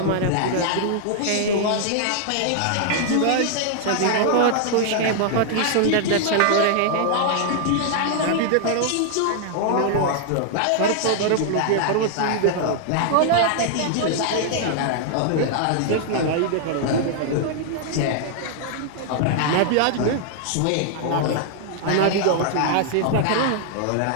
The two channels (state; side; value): different; both; correlation -0.01